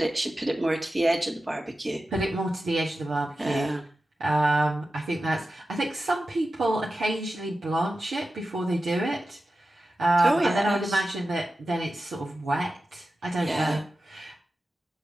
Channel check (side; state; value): both; normal; correlation 0.93